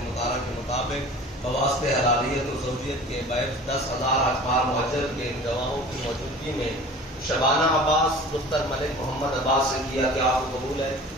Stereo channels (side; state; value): both; normal; correlation 0.41